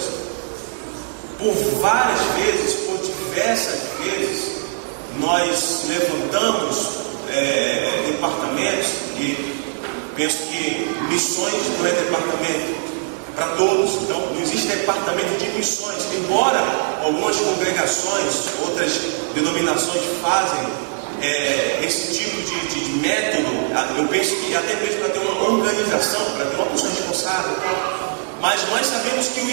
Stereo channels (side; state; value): left; silent; digital silence